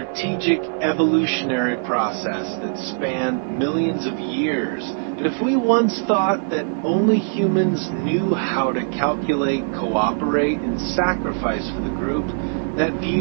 evolutionary process that spanned millions of years. And if we once thought that only humans knew how to calculate, cooperate, and sacrifice for the group, that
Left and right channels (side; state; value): left; silent; digital silence